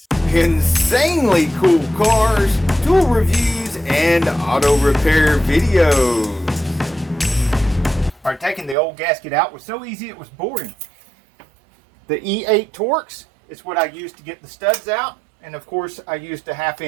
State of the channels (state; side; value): drops out; left; at 8.8 s